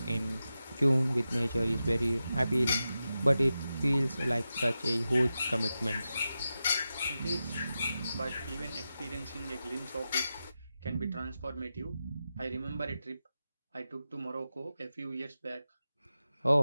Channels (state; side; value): inverted; both; correlation -0.91